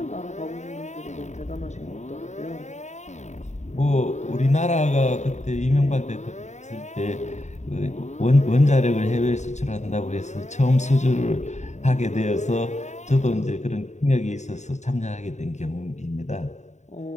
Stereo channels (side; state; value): right; late; 0.34 ms